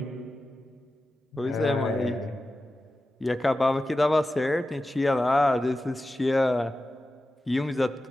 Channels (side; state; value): both; normal; correlation 0.93